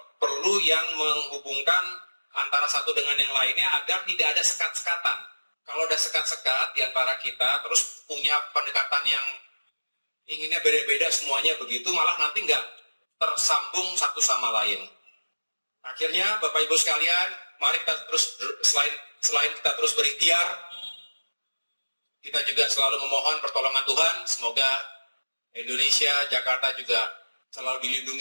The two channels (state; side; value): inverted; both; correlation -1.00